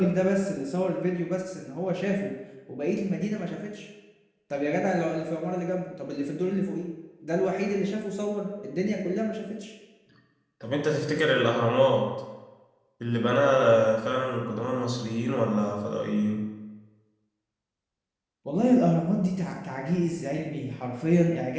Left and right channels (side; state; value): both; identical; correlation 1.00